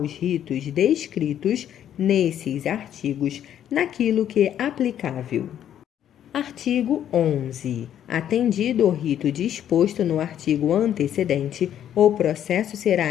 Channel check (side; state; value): right; quieter; 10.3 dB